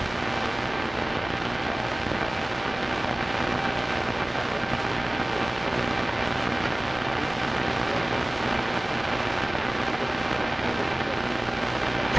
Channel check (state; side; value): noise; right; rumble, 21 dB below the sound